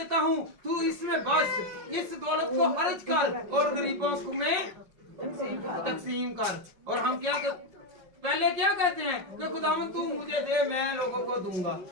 हूँ, तू इसमें बस इस दौलत को खर्च कर और गरीबों को में तकसीम कर। और हम क्या पहले क्या कहते हैं कि खुदावन तू मुझे दे मैं लोगों को दूंगा।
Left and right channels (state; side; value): late; left; 5.5 ms